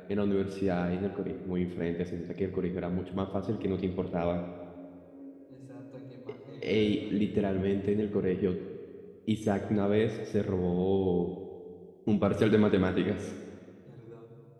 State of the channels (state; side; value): identical; both; correlation 1.00